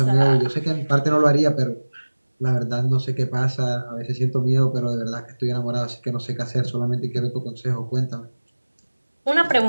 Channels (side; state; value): both; inverted; correlation -1.00